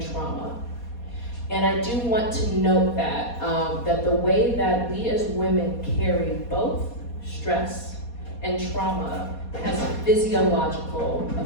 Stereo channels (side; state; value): right; late; 4.2 ms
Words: trauma. And I do want to note that, that the way that we as women carry both stress and trauma has physiological